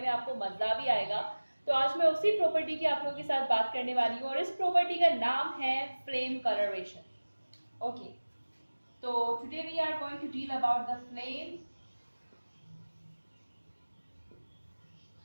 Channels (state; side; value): inverted; both; correlation -1.00